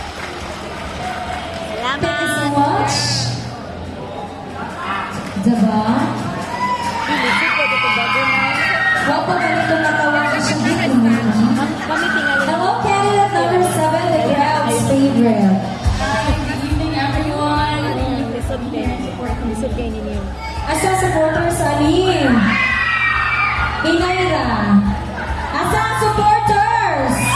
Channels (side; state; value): both; identical; correlation 1.00